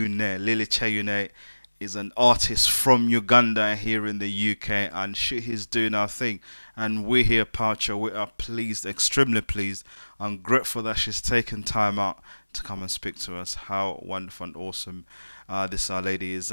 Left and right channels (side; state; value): both; inverted; correlation -1.00